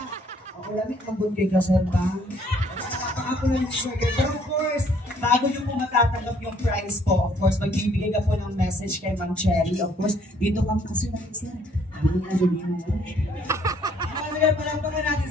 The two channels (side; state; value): both; normal; correlation 0.63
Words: Ako lamit, mambun kayo ka sir ba? Napaka po lang sir. Pero of course, bago nyo po matatanggap yung prize po, of course, magbibigay ka po ng message kay Ma'am Cherry. Of course, dito ka kasi natin sir. Ano nga sabihin mo? Ano yan, palampakan natin